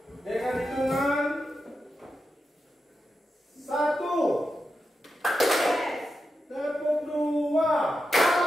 Dengan hitungan 1, tepuk 2,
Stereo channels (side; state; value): both; normal; correlation 0.88